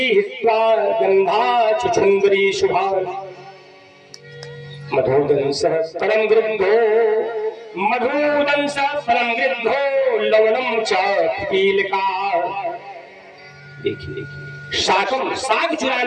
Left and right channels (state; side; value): identical; both; correlation 1.00